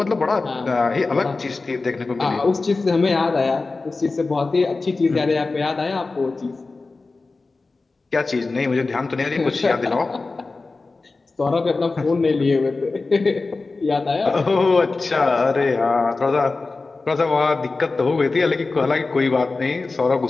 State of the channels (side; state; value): right; quieter; 3.7 dB